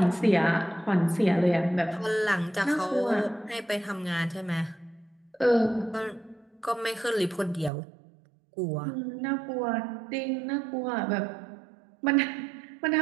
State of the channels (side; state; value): left; drops out; at 7.7 s